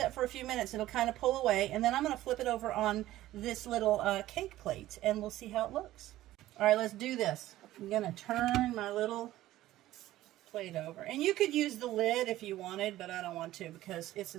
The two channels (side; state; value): left; quieter; 15.1 dB